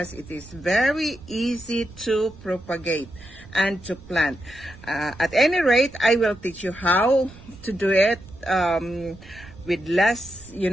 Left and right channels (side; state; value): right; noise; rumble, 20 dB below the sound